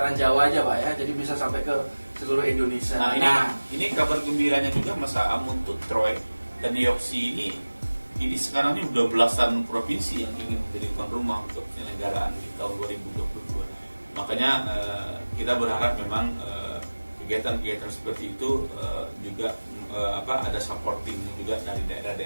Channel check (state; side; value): inverted; both; correlation -1.00